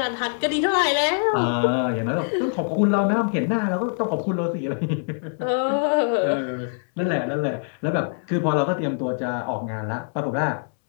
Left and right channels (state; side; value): silent; right; 63 dB below the other